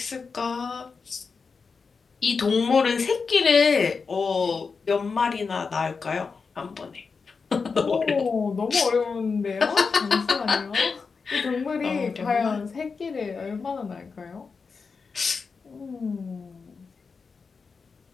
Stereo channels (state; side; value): quieter; right; 5.0 dB